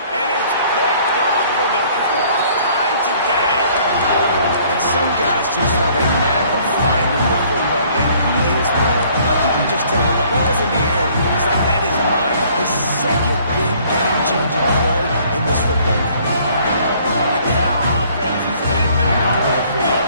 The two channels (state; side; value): inverted; both; correlation -0.58